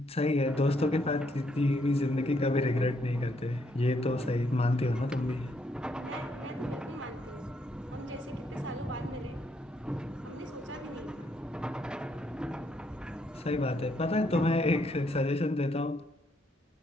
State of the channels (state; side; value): normal; both; correlation 0.73